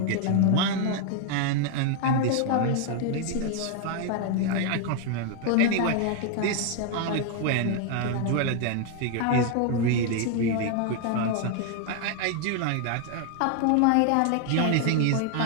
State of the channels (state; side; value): different; both; correlation 0.00